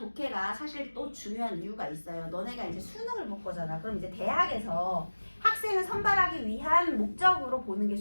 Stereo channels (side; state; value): both; inverted; correlation -1.00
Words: 사실 또 중요한 이유가 있어요. 너네가 이제 수능을 볼 거잖아. 그럼 이제 대학에서 학생을 선발하기 위한 목적으로 보는 게